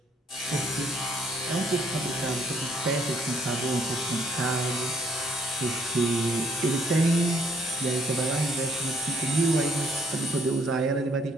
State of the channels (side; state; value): both; normal; correlation 0.67